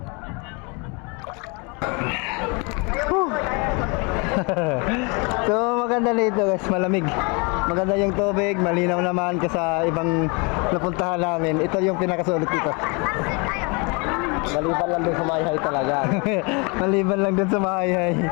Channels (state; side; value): quieter; right; 30.9 dB